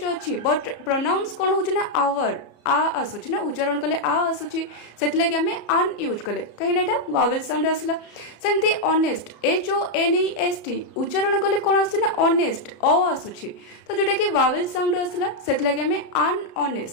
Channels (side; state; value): right; late; 33 ms